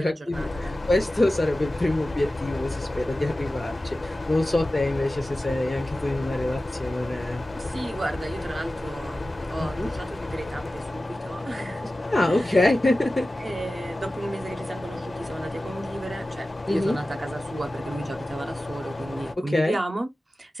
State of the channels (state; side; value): normal; both; correlation 0.95